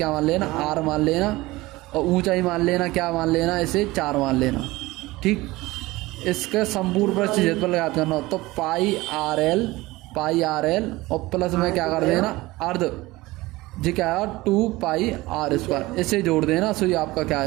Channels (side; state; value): left; quieter; 19.9 dB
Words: मान लेना, आर मान लेना, और ऊंचाई मान लेना, क्या मान लेना, इसे 4 मान लेना, ठीक। इसके संपूर्ण पृष्ठ क्षेत्रफल याद करना हो तो पाई आर एल और प्लस में क्या कर देना, अर्ध, जी क्या है 2 पाई आर स्क्वायर, इसे जोड़ देना, सो ये आपका क्या